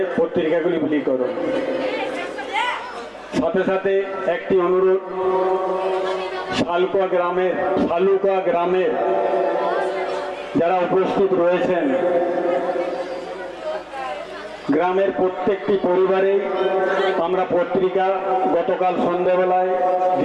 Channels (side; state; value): both; identical; correlation 1.00